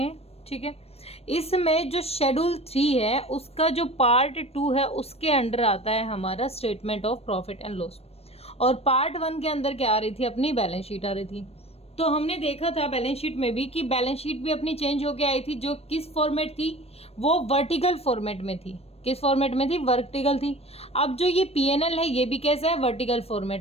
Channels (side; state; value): right; late; 0.29 ms